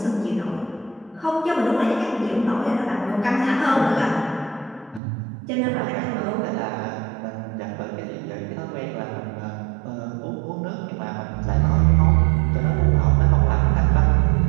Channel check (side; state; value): left; drops out; at 5.0 s